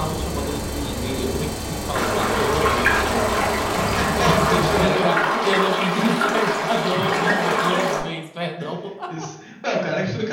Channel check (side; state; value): both; identical; correlation 1.00